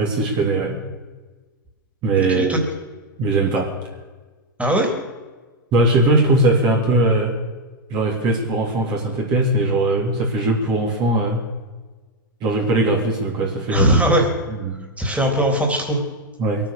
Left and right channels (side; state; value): both; normal; correlation 0.03